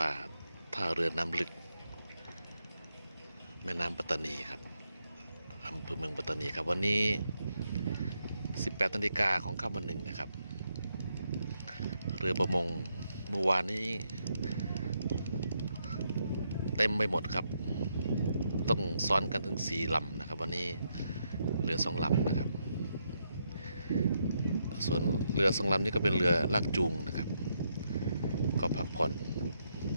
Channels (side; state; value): both; inverted; correlation -0.79